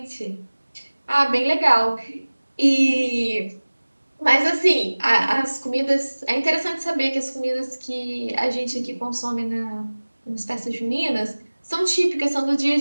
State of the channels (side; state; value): both; inverted; correlation -1.00